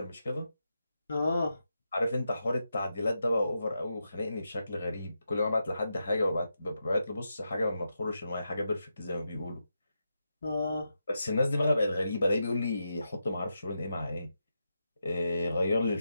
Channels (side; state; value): both; inverted; correlation -0.86